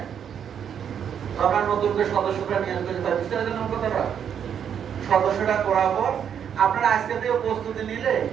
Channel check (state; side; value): quieter; left; 8.3 dB